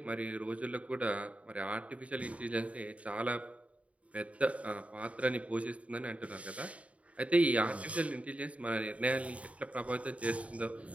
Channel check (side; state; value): left; late; 0.066 ms